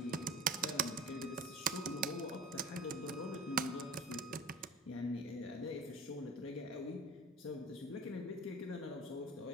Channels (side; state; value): both; normal; correlation 0.36